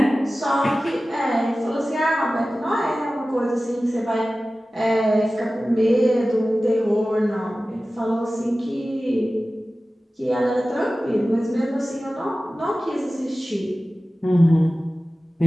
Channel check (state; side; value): normal; both; correlation 0.96